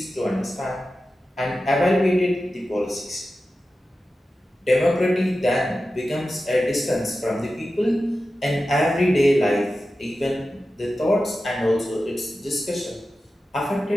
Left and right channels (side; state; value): both; normal; correlation 0.93